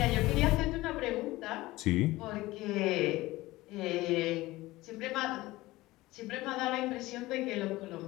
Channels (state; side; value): quieter; right; 18.8 dB